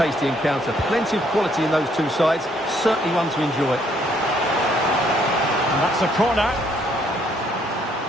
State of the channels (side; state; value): both; normal; correlation 0.68